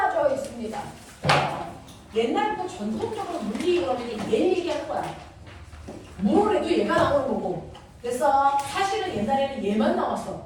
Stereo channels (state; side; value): identical; both; correlation 1.00